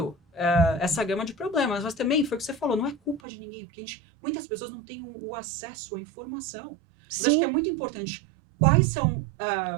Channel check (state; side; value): drops out; left; at 3.2 s